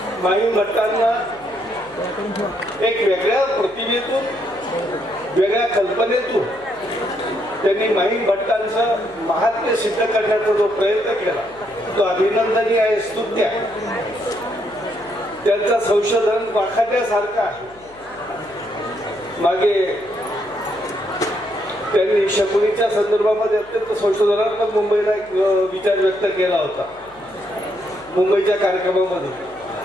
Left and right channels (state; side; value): noise; left; hum, 27 dB below the sound